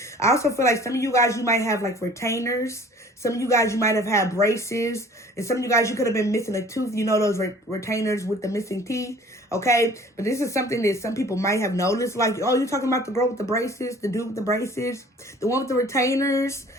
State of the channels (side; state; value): both; normal; correlation 0.50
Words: I also feel like some of you guys, you might have like retainers. Some of you guys, you might have had braces. And some of you guys, you could have been missing a tooth. You know, those retainers with the missing teeth, okay? But this is something that some people might have noticed. Like, oh, you're talking about the girl with the braces, the dude with the braces, the one with the retainers.